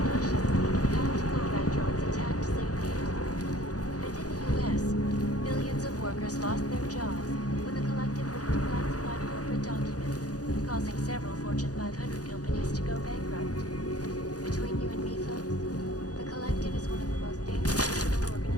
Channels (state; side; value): late; right; 0.68 ms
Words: workers lost their jobs when the collective leaked classified corporate documents, causing several Fortune 500 companies to go bankrupt. Between you and me, folks, the collective is one of the most dangerous criminal